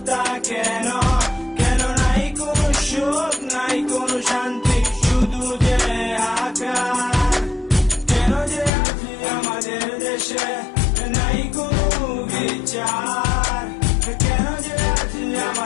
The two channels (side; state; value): right; drops out; at 8.7 s